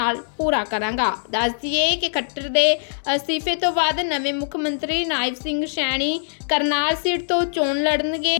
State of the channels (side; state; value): right; silent; 64 dB below the other